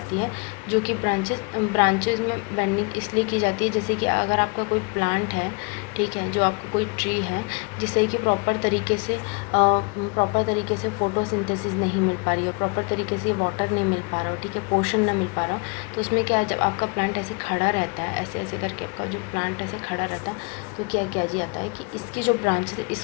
है जो कि ब्रांचेस में बेंडिंग इसलिए की जाती है, जैसे कि अगर आपका कोई प्लांट है, ठीक है, जो आपका कोई ट्री है जिससे कि प्रॉपर तरीके से फोटोसिंथेसिस नहीं मिल पा रही है, प्रॉपर तरीके से वाटर नहीं मिल पा रहा हो, ठीक है, पोषण ना मिल पा रहा हो, तो उसमें क्या, जब आपका प्लांट ऐसे खड़ा रहता है, ऐसे ऐसे करके आपका जो प्लांट ऐसे खड़ा रहता है तो क्या किया जाता है कि इसकी जो ब्रांचेस है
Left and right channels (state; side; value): quieter; right; 32.5 dB